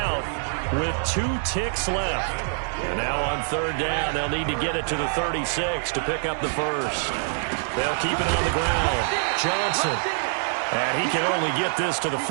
with 2 ticks left. And now on 3rd down, they'll need to get it to the 36 to pick up the first. They'll keep it on the ground. Johnson. And he can only get this to the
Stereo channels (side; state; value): left; silent; digital silence